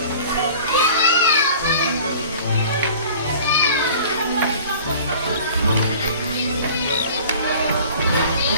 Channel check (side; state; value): both; inverted; correlation -0.45